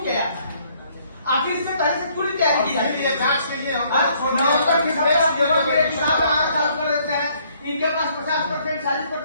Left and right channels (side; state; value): both; inverted; correlation -0.65